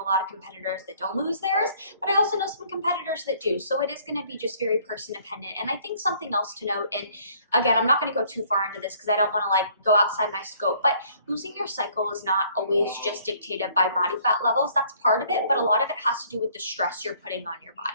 lot of competitors that don't lose theirs, but I also know some competitors that do. So it is going to be just very person dependent. And I think something else to note, and again, I'm not going to go too far into this because I don't want to like go outside my scope, but losing your cycle is not always just dictated by body fat levels. That's part of it, but a lot of it has to do with the stress you're putting on your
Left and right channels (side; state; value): both; inverted; correlation -0.60